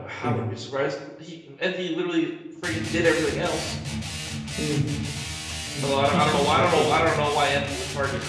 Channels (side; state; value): both; identical; correlation 1.00